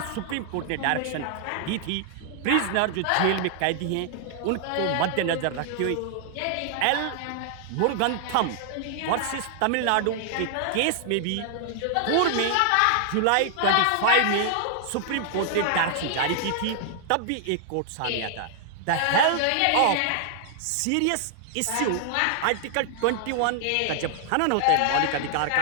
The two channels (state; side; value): different; both; correlation 0.00